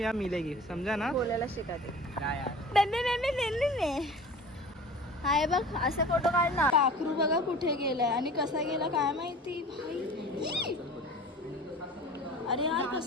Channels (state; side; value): normal; both; correlation 0.41